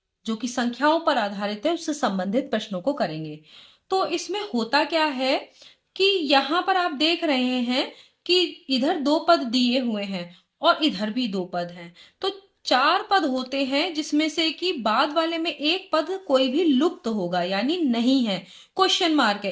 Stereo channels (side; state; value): both; identical; correlation 1.00